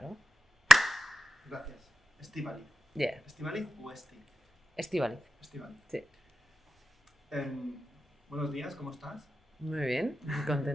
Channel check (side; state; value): both; normal; correlation 0.91